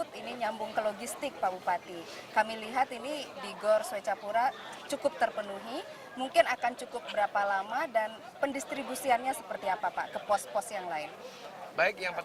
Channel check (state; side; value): identical; both; correlation 1.00